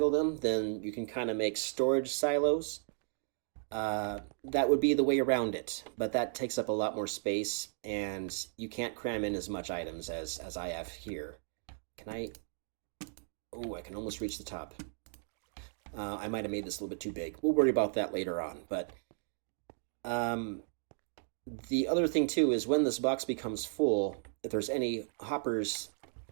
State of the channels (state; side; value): silent; left; digital silence